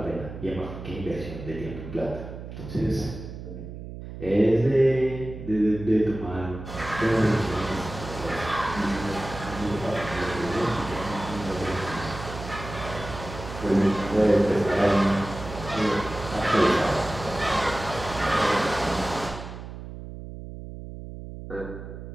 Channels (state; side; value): noise; right; hum, 11 dB below the sound